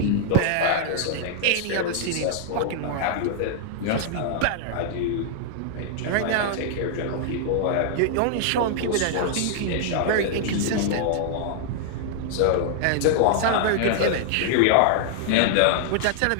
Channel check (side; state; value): both; different; correlation -0.01